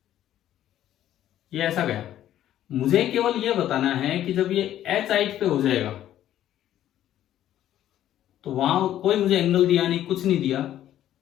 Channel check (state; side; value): quieter; right; 12.1 dB